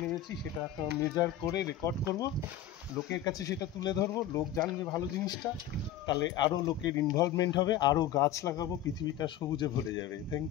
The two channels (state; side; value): quieter; right; 10.8 dB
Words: নেমেছি। সেটা মেজার করে রেকর্ড করব, লোকের কাছে সেটা তুলে ধরবো, লোক জানবে ভালো জিনিসটা, তাহলে আরও লোকের ইনভলভমেন্ট হবে, আরও গাছ লাগাবো, পৃথিবীটা সবুজে ভরে যাবে। Thank